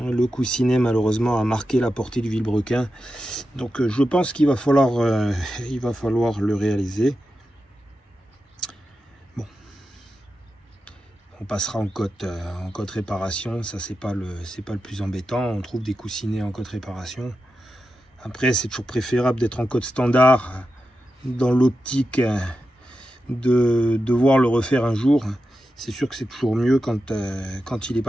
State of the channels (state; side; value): normal; both; correlation 0.90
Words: coussinet malheureusement a marqué la portée du vilebrequin. Donc je pense qu'il va falloir le réaliser. Bon, on passera en cote réparation. Ça c'est pas le plus embêtant. On trouve des coussinets en cote réparation. Après c'est toujours préférable d'être en cote standard, dans l'optique de devoir le refaire un jour. C'est sûr que c'est toujours mieux quand il n'est